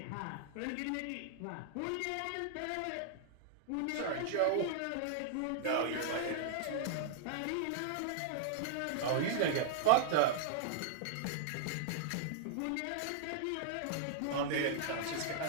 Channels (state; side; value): different; both; correlation -0.01